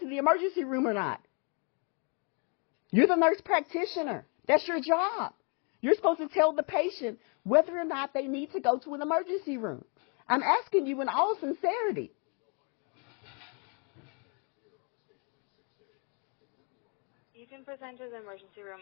the emergency room or not. You're the nurse practitioner. That's your job. You're supposed to tell the patient whether or not they need to go to an emergency room. I'm asking you in all sincerity. You can present to the emergency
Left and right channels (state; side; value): quieter; right; 36.9 dB